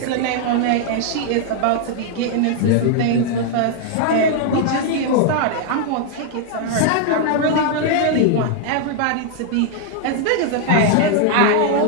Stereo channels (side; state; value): both; different; correlation 0.00